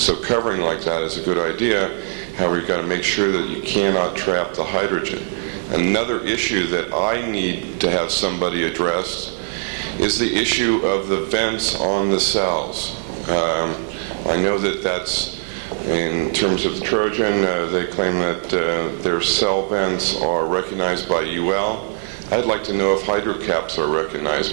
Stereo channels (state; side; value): silent; left; 65 dB below the other